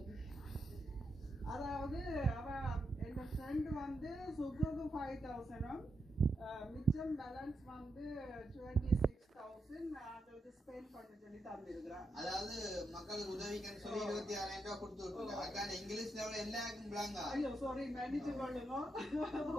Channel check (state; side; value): normal; both; correlation 0.84